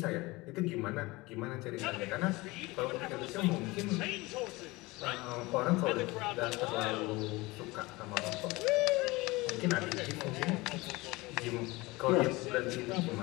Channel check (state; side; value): quieter; right; 22.1 dB